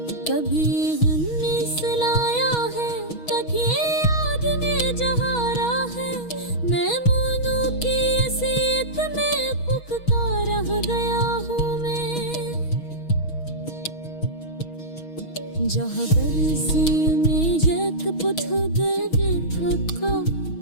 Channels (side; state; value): right; late; 6.3 ms